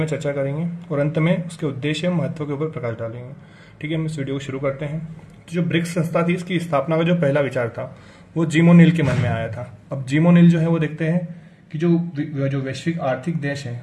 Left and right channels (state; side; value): identical; both; correlation 1.00